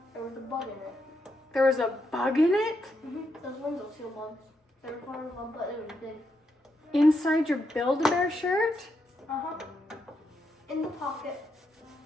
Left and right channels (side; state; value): both; normal; correlation 0.81